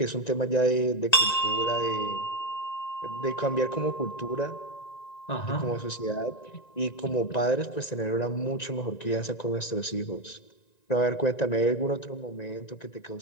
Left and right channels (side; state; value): right; late; 1.9 ms